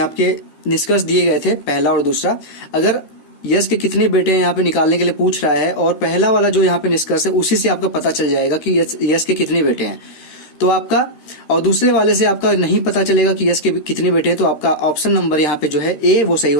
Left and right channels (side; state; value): right; late; 13 ms